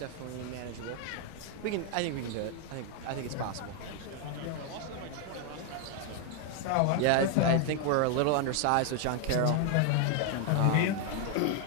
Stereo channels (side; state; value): both; different; correlation 0.01